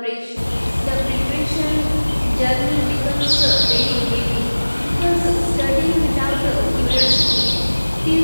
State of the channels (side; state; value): both; inverted; correlation -1.00